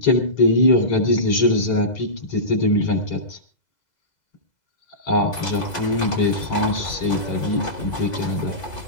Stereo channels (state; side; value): late; right; 2.0 ms